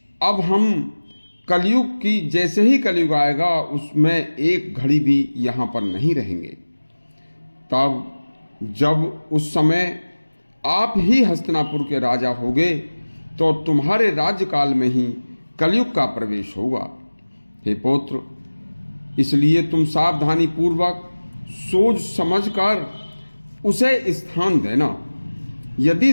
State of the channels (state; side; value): inverted; both; correlation -1.00